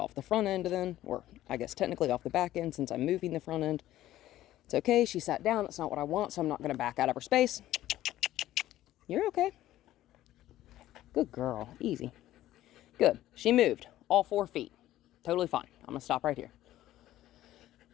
the front end then, or I guess technically off the back end since I'm moving the front end. It's okay, she sat down, that's not what I want, so I'm not going to back out of her space. You're okay. Good girl, easy. Good, she moved, all 4 feet. Totally fine, I'm going to stop right here.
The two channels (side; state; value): right; quieter; 14.2 dB